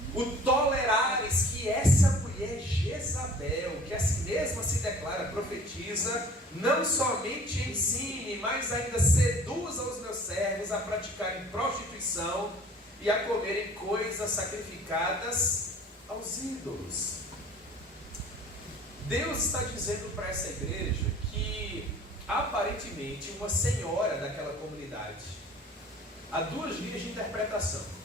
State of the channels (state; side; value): normal; both; correlation 0.49